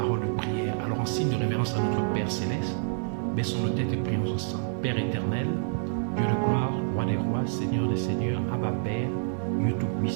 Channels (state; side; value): silent; left; digital silence